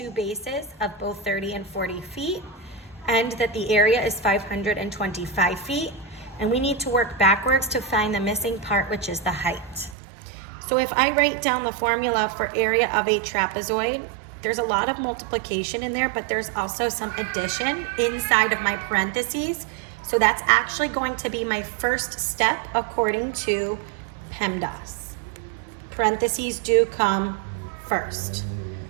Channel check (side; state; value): left; drops out; at 10.0 s